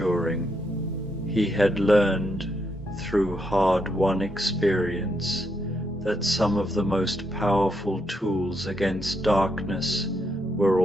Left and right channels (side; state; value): both; normal; correlation 0.79